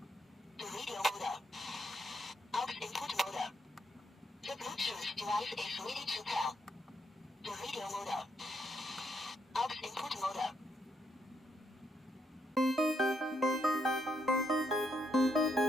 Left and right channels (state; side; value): normal; both; correlation 0.77